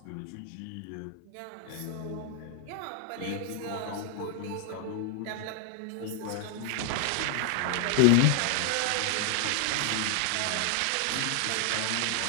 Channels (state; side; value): different; both; correlation 0.00